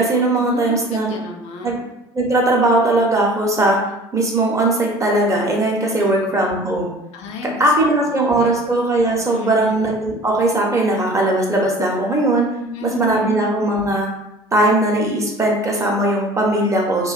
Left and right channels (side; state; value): both; normal; correlation 0.46